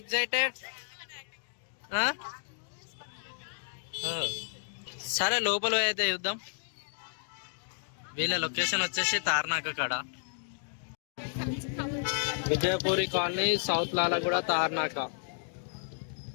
సరే లోపల అయితే చూద్దాం. వీళ్ళ లొకేషన్ వచ్చేసి తార్నాక కాడ, Vijayapuri colony, south Lalaguda, Tarnaka.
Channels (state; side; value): silent; right; digital silence